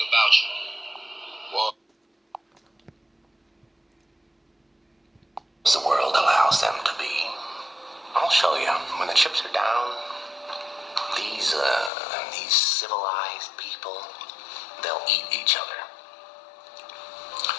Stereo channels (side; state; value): right; drops out; at 11.9 s